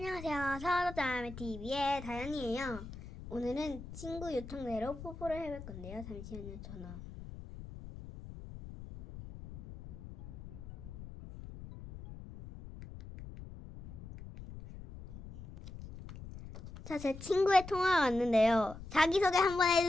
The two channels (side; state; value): left; noise; rumble, 13 dB below the sound